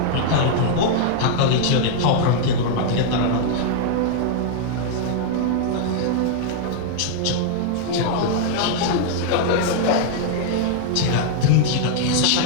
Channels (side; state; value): both; different; correlation -0.01